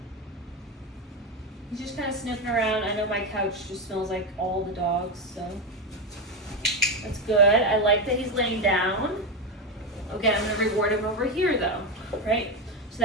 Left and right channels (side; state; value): both; normal; correlation 0.12